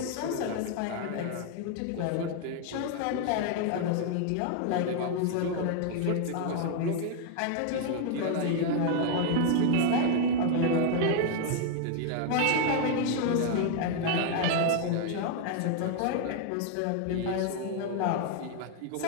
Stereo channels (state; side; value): different; both; correlation 0.00